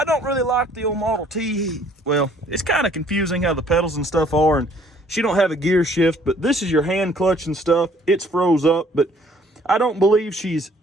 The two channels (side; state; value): both; normal; correlation 0.60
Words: don't really like the old Model T. Well, it's kind of confusing how the pedals and stuff are, and she don't have a gear shift, but this is your hand clutch and stuff. It's froze up, but I don't believe she's